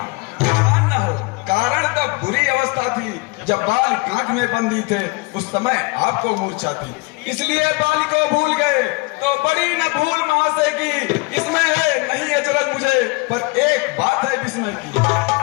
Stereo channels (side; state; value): right; quieter; 27.1 dB